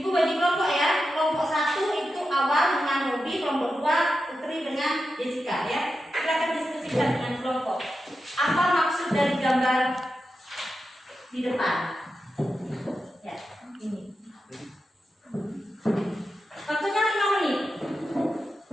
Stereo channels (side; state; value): both; normal; correlation 0.90